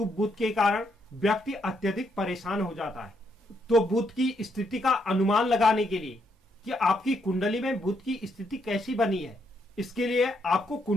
बुध के कारण व्यक्ति अत्यधिक परेशान हो जाता है। तो बुध की स्थिति का अनुमान लगाने के लिए कि आपकी कुंडली में बुध की स्थिति कैसी बनी है, इसके लिए आपको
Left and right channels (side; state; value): both; normal; correlation 0.76